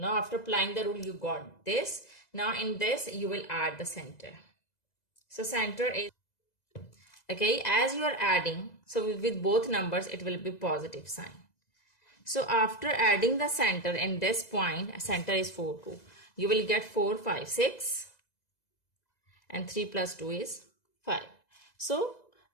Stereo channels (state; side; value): late; right; 2.0 ms